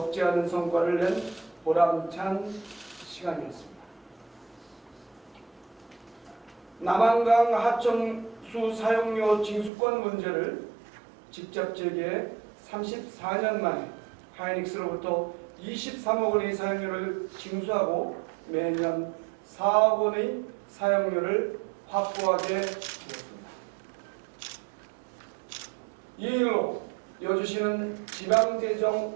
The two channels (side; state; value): left; drops out; at 9.7 s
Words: 않은 성과를 낸 보람찬 시간이었습니다. 남한강 하천수 사용료 징수권 문제를 직접 제기해 34년 만에 하이닉스로부터 23억 원의 사용료를 징수하고 매년 4억 원의 사용료를 확보하게 되었습니다. 이 일로 여주시는